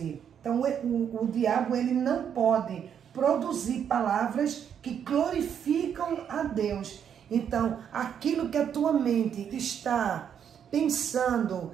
Então o diabo, ele não pode produzir palavras que glorificam a Deus. Então aquilo que a tua mente está pensando,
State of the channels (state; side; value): quieter; left; 8.4 dB